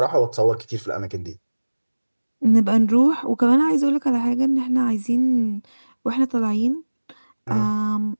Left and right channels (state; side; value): inverted; both; correlation -1.00